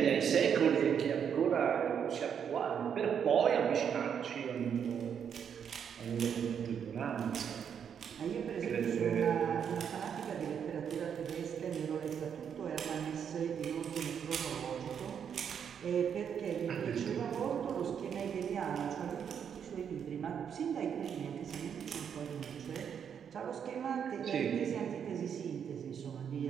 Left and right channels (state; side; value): quieter; left; 7.9 dB